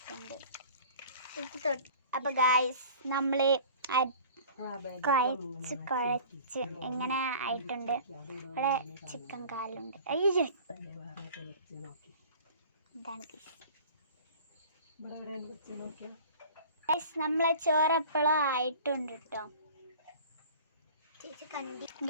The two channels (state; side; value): inverted; both; correlation -0.44